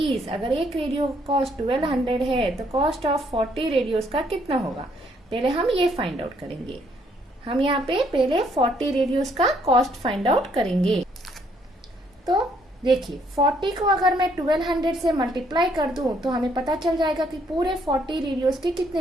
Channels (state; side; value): normal; both; correlation 0.68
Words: अगर एक रेडियो कॉस्ट 1200 है तो कॉस्ट ऑफ 40 रेडियोस का कितना होगा, पहले हम ये फाइंड आउट करेंगे। हम यहाँ पे पहले 40 रेडियोस का कॉस्ट फाइंड आउट करेंगे। तो देखिए 40 को अगर मैं 1200 से मल्टीप्लाई कर दूं तो हमें पता चल जाएगा कि पूरे 40 रेडियोस के